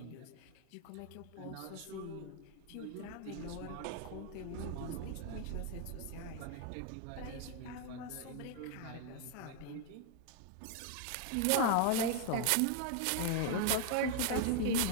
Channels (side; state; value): both; different; correlation 0.00